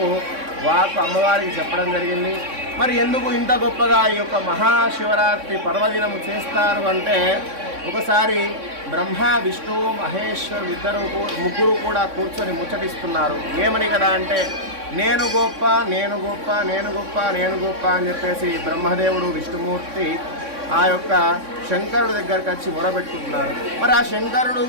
అమ్మవారికి చెప్పడం జరిగింది. మరి ఎందుకు ఇంత గొప్పగా ఈ యొక్క మహాశివరాత్రి పర్వదినము చేస్తారు అంటే, ఒకసారి బ్రహ్మ విష్ణు మహేశ్వరుడు ముగ్గురు కూడా కూర్చొని ముచ్చటిస్తున్నారు. ఏమని కదా అంటే, నేను గొప్ప నేను గొప్ప నేను గొప్ప నేను గొప్ప అని చెప్పేసి బ్రహ్మదేవుడు విష్ణుమూర్తి ఆ యొక్క శంకరుడి దగ్గరికి వచ్చి మొరబెట్టుకుంటున్నారు. మరి ఆ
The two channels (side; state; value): left; late; 3.6 ms